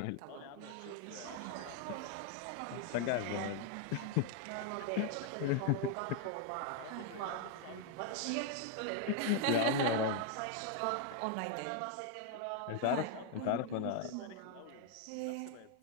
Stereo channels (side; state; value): both; different; correlation 0.00